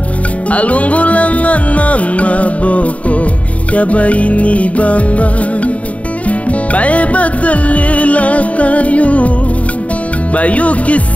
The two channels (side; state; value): right; late; 0.067 ms